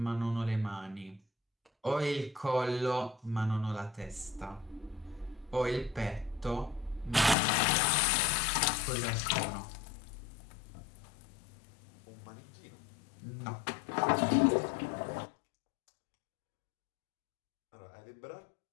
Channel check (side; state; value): right; drops out; at 7.4 s